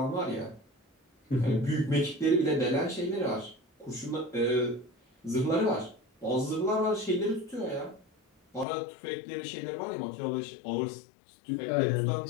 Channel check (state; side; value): drops out; right; at 8.7 s